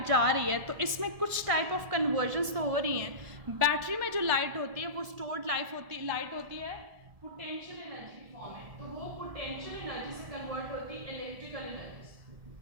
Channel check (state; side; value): late; left; 1.7 ms